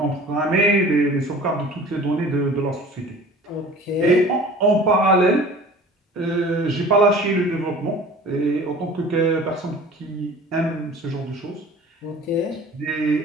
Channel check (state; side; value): normal; both; correlation 0.44